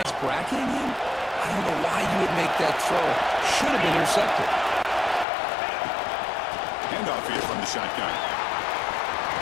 bracketing him, I don't know why you would make that throw. Should have been intercepted. Handoff here from the shotgun.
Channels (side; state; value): right; drops out; at 5.2 s